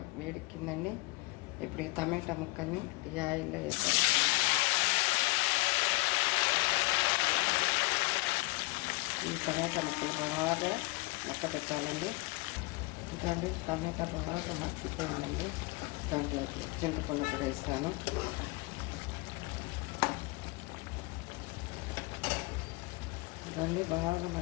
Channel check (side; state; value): right; quieter; 24.6 dB